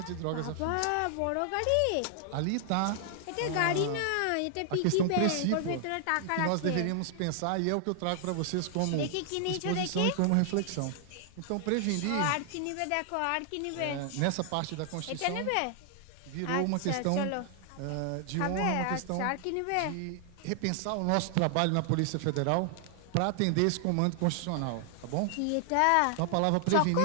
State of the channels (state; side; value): different; both; correlation 0.00